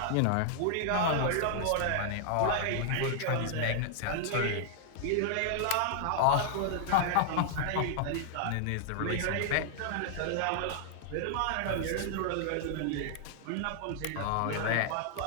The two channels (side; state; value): both; different; correlation -0.01